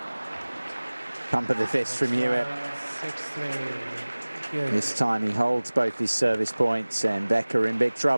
Pump of the fist from Hewitt. 6-3. This time he holds both his service points, and Becker in big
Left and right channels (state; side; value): inverted; both; correlation -1.00